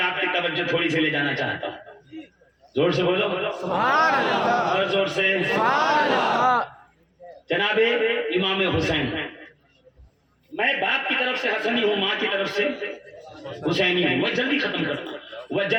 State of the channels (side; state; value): both; identical; correlation 1.00